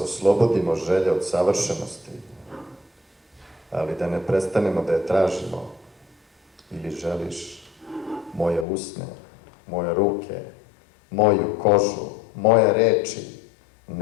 želje od savršenosti, ali da ne prestanemo da je tražimo? Ili želiš moje usne, moje ruke, moju kožu, moje reči,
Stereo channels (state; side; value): drops out; right; at 8.7 s